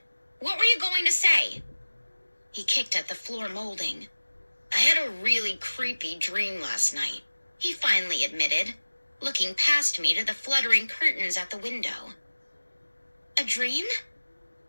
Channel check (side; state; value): both; inverted; correlation -1.00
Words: What were you going to say? He kicked at the floor molding. I had a really creepy dream last night, he finally admitted, looking past me to the fluttering curtains at the window. A dream?